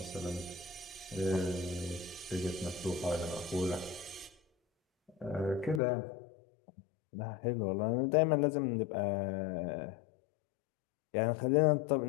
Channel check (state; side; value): drops out; right; at 5.8 s